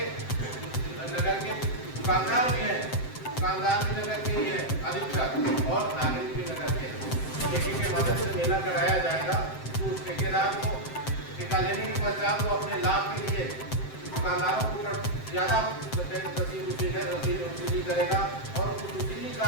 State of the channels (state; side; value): late; right; 7.7 ms